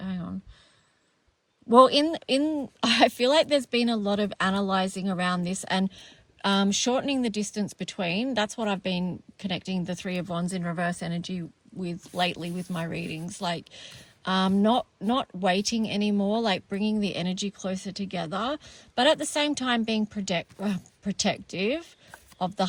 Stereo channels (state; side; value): identical; both; correlation 1.00